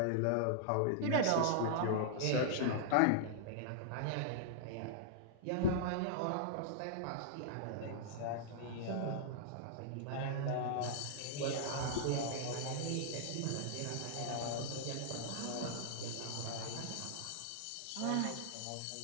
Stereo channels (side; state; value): both; different; correlation -0.01